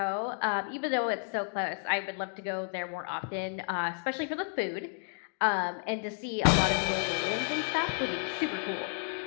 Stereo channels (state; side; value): silent; right; digital silence